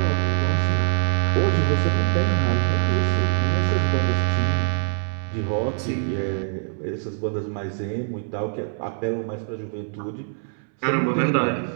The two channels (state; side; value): silent; left; 63 dB below the other